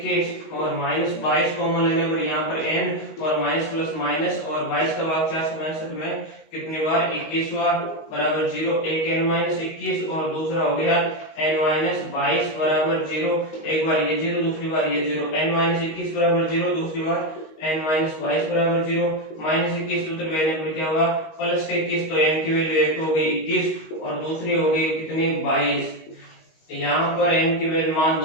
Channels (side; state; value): right; late; 19 ms